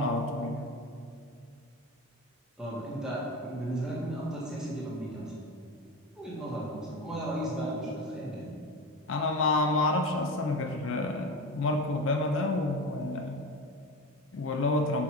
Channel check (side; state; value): both; normal; correlation 0.27